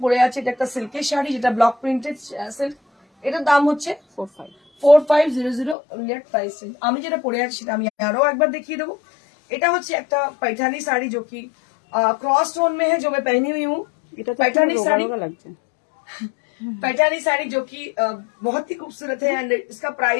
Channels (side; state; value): right; drops out; at 5.8 s